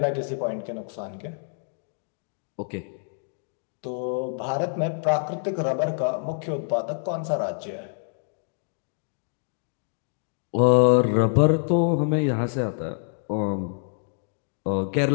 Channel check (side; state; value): right; silent; digital silence